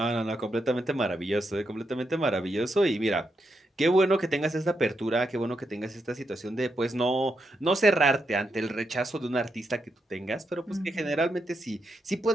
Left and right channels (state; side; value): normal; both; correlation 0.83